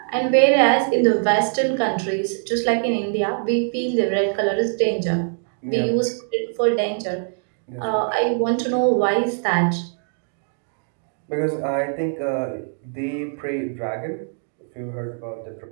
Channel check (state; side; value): silent; left; digital silence